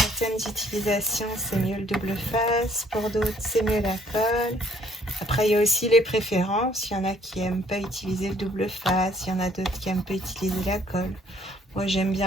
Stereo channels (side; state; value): both; normal; correlation 0.62